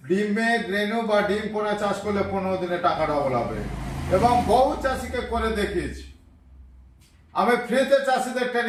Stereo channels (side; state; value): both; identical; correlation 1.00